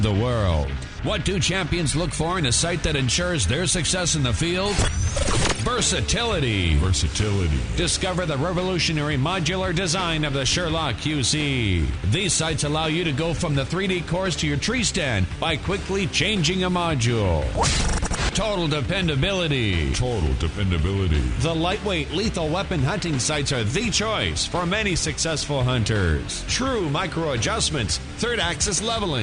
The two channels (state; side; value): identical; both; correlation 1.00